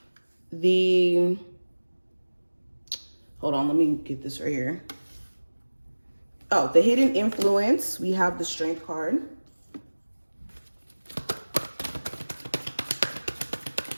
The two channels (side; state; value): both; inverted; correlation -1.00